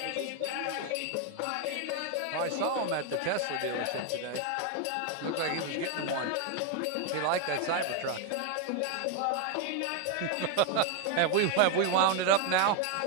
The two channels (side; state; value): both; different; correlation 0.01